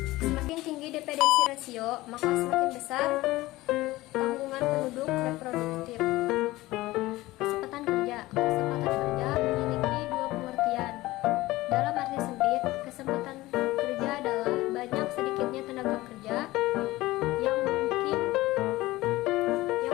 Semakin tinggi dependensi rasio, maka semakin besar tanggungan penduduk reproduktif. Kesempatan kerja memiliki dua pengertian. Dalam arti sempit, kesempatan kerja adalah banyak sedikitnya tenaga kerja yang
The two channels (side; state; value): right; quieter; 18.4 dB